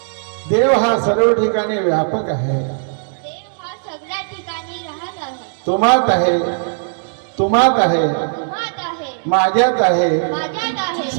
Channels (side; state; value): left; silent; digital silence